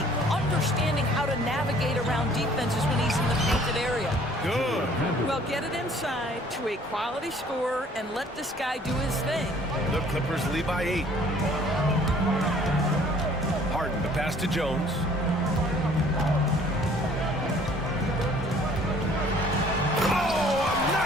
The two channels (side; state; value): both; normal; correlation 0.56